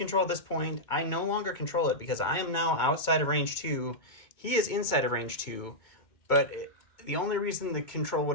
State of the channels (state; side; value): late; right; 2.2 ms